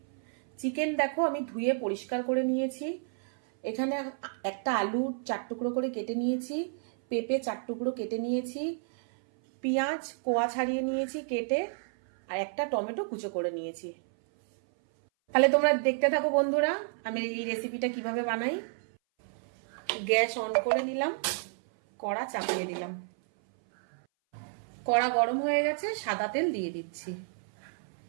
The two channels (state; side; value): silent; left; 57 dB below the other